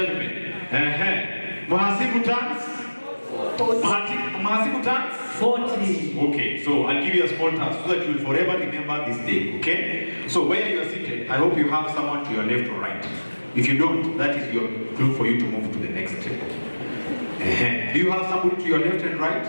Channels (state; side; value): inverted; both; correlation -1.00